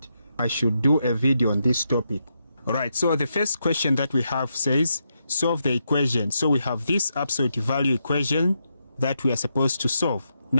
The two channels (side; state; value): both; inverted; correlation -0.83